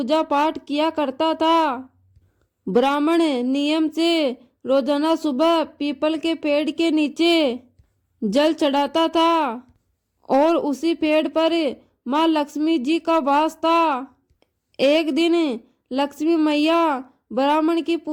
पाठ किया करता था। ब्राह्मण नियम से रोजाना सुबह पीपल के पेड़ के नीचे जल चढ़ाता था और उसी पेड़ पर माँ लक्ष्मी जी का वास था। एक दिन लक्ष्मी मैया ब्राह्मण की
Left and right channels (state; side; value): identical; both; correlation 1.00